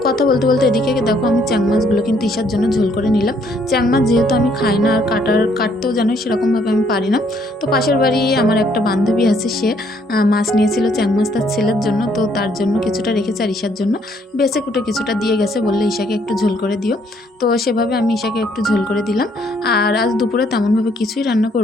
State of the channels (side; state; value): both; normal; correlation 0.67